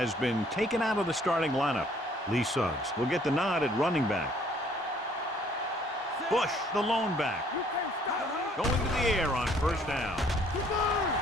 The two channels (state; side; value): normal; both; correlation 0.61